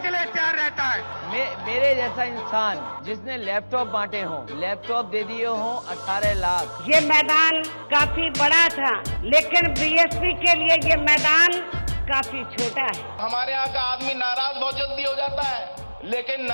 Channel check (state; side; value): inverted; both; correlation -1.00